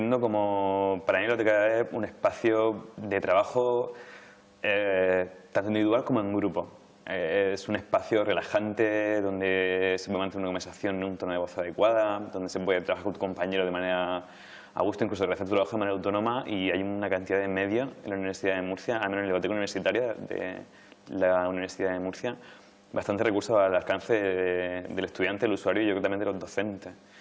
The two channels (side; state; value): both; identical; correlation 1.00